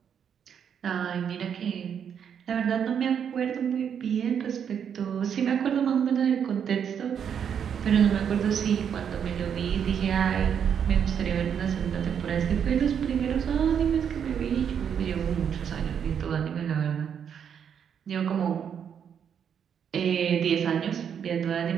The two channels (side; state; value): left; quieter; 8.0 dB